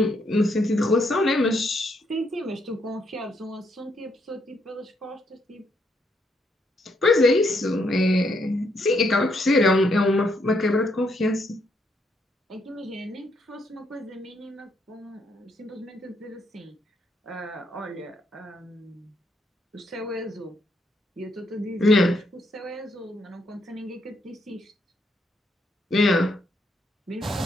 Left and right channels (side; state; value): both; normal; correlation 0.75